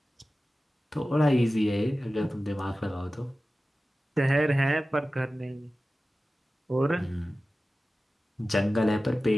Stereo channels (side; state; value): both; normal; correlation 0.96